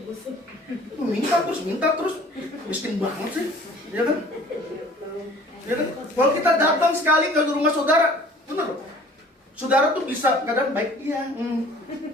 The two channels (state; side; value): normal; both; correlation 0.50